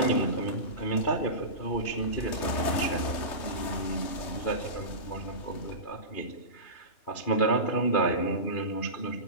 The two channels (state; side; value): late; right; 3.3 ms